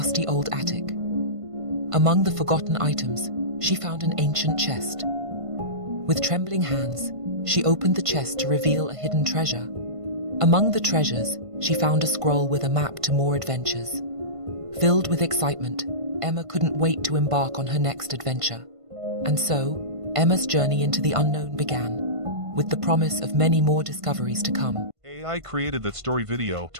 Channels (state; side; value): late; left; 1.5 ms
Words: old attic. Among the forgotten items, she found an ancient chest. With trembling hands, she opened the chest to reveal a hidden treasure. Among the treasures, she found a scroll with a map to more adventures. Filled with excitement, Emma couldn't wait to embark on her next adventure. And so, Emma's journey into the unknown began, with the promise of many more discoveries to come. AI created that story video